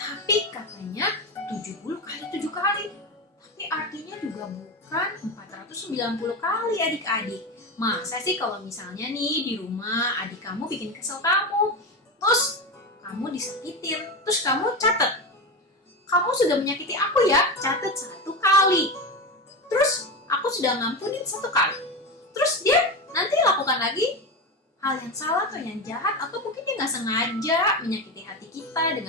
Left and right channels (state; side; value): normal; both; correlation 0.20